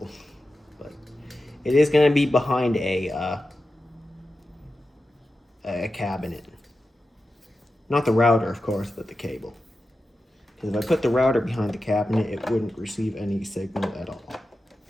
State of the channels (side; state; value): both; normal; correlation 0.92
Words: But it is going to be behind a cabinet. Not the router, of course, but the cable. Because if I put the router behind the cabinet, it wouldn't receive any signal at all.